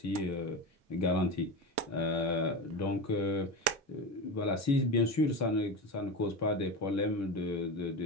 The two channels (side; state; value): both; normal; correlation 0.23